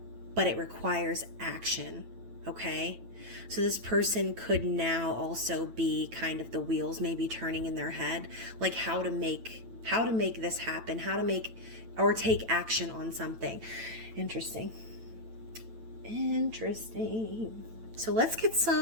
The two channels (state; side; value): late; left; 9.0 ms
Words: but it requires action, okay? So this person could now also be kind of the wheels maybe turning in their head, like how to make this happen, how to make or take action on something. Interesting. So let's get